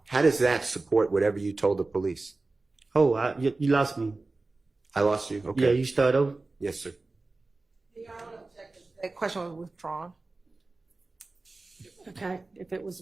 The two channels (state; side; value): quieter; left; 3.4 dB